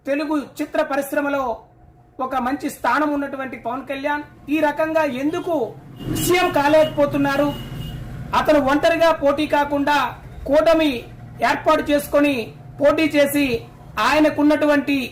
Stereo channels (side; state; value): both; identical; correlation 1.00